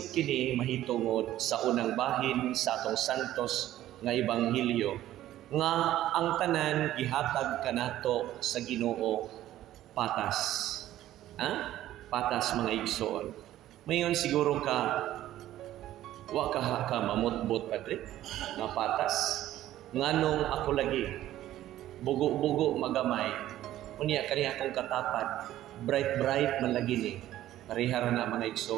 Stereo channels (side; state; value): left; quieter; 13.6 dB